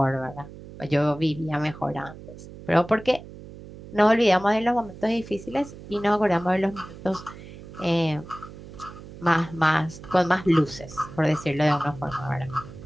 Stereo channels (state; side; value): noise; right; hum, 16 dB below the sound